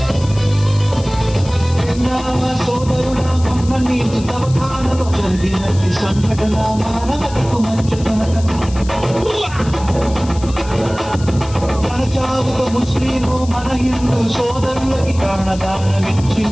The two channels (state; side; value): noise; left; hiss, 17 dB below the sound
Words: సోదరుడా మొన్న నీకు తవఖానలో జరిగినది సంఘటన మానవతకు మంచుతనక తన చావుకు ముస్లిము మన హిందూ సోదరులకి